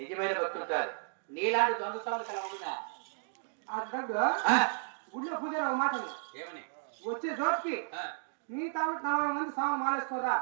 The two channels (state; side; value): silent; left; digital silence